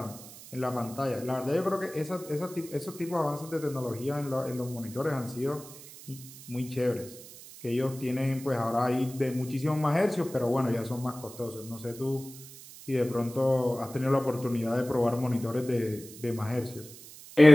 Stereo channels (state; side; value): noise; right; hiss, 17 dB below the sound